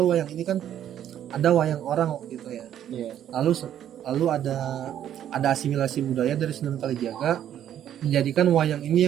wayang ini kan ada wayang orang waktu itu ya. Lalu ada asimilasi budaya dari Sunan Kalijaga menjadikan wayang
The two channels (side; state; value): left; quieter; 10.6 dB